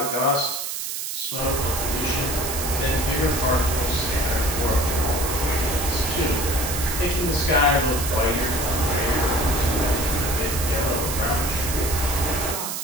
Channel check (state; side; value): noise; right; hiss, 4 dB below the sound